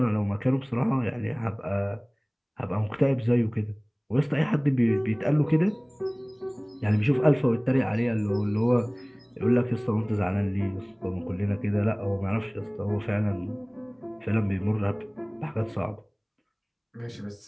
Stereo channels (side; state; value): both; identical; correlation 1.00